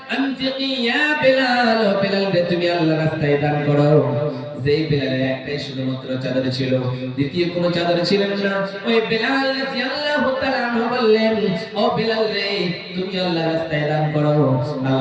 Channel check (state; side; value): identical; both; correlation 1.00